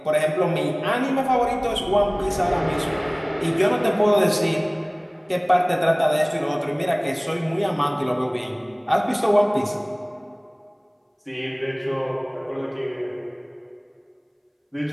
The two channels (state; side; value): identical; both; correlation 1.00